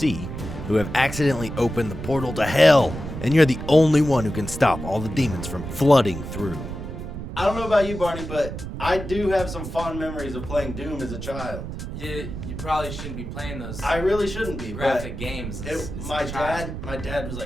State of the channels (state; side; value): noise; right; rumble, 8 dB below the sound